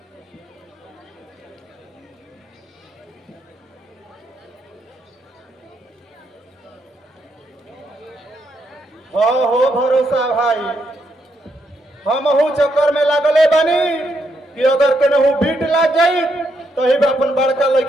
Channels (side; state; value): both; normal; correlation 0.78